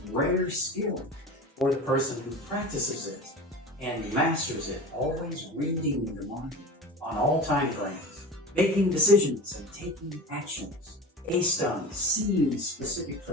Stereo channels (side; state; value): both; normal; correlation 0.33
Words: rare skill for the person who practices it and masters it, always reading the market on all time frames, making decisions and taking actions based on seeing specific